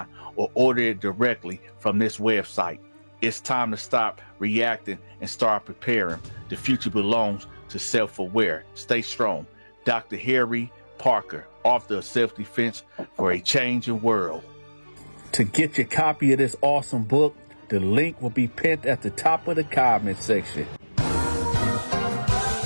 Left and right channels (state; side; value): inverted; both; correlation -1.00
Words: or order it directly from this website. It's time to stop reacting and start preparing. The future belongs to self-aware. Stay strong. Dr. Harry Parker, author of Self-Defense for a Changing World. To get your copy of this awesome book, the link will be pinned at the top of the comment section.